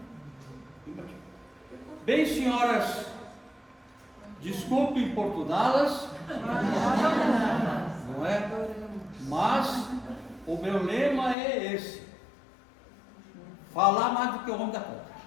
Bem, senhoras, desculpe importuná-las, não é? Mas o meu lema é esse: falar mais do que o homem da conta.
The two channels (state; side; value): drops out; right; at 11.4 s